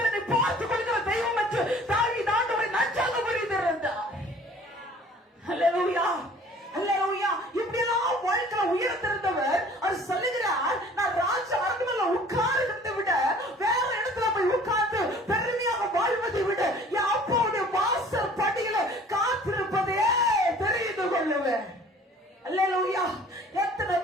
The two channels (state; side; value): normal; both; correlation 0.50